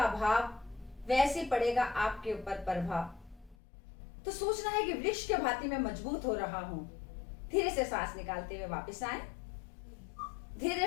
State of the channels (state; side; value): drops out; right; at 3.6 s